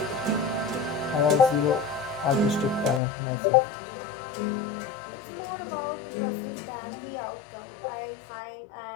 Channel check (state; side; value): drops out; right; at 3.0 s